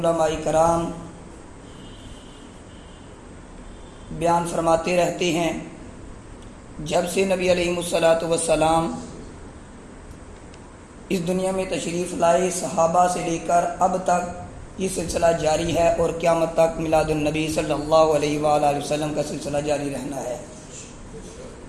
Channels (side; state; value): both; identical; correlation 1.00